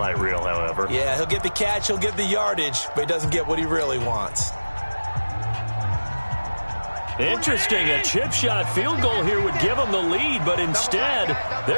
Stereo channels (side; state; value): both; inverted; correlation -1.00